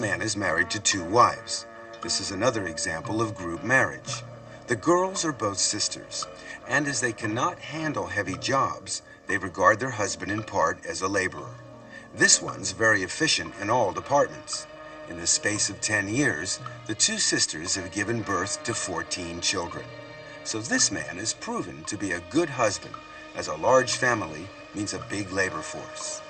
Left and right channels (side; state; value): both; identical; correlation 1.00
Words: is married to 2 wives. This is another example of group marriage. The girls are both sisters, and as they cannot handle heavy jobs, they regard their husband in part as a laborer. This one's very efficient in all departments. In the space of 10 years, the 2 sisters have given birth to 14 children. So this man is proven to be a good husband, as a large family means a big labor force.